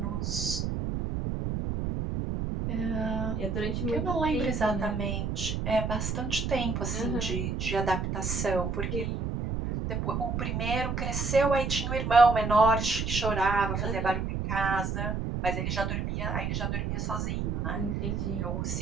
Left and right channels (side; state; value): right; noise; rumble, 1 dB below the sound